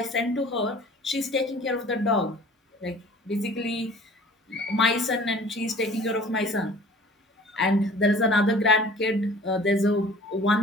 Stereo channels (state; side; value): normal; both; correlation 0.48